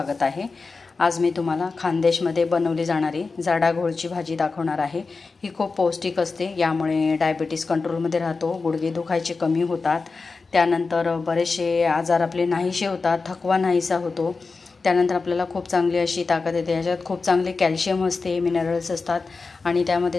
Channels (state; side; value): quieter; right; 4.2 dB